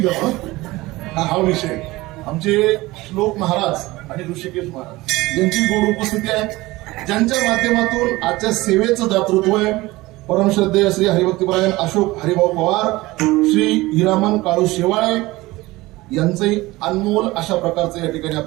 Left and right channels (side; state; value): left; quieter; 19.8 dB